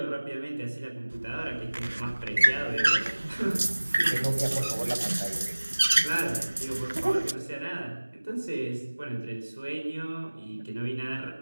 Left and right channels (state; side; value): inverted; both; correlation -1.00